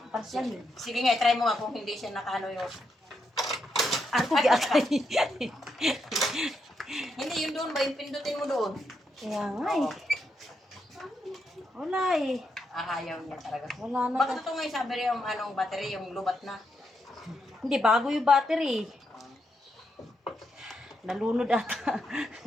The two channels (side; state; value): both; normal; correlation 0.81